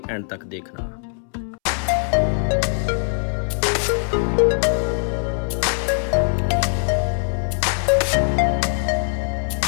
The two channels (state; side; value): silent; right; 65 dB below the other